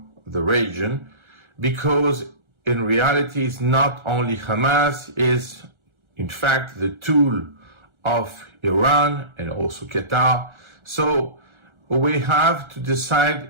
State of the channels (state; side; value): late; left; 1.4 ms